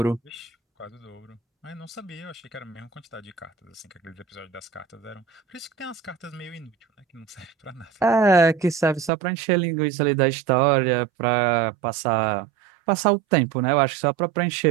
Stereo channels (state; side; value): drops out; left; at 9.1 s